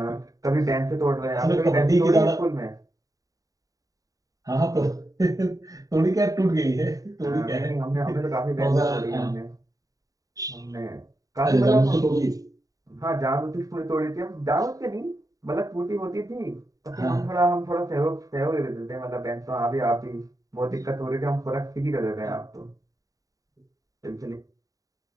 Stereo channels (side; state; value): left; late; 0.17 ms